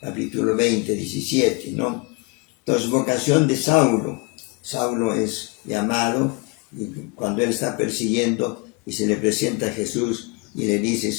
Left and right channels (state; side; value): quieter; right; 27.0 dB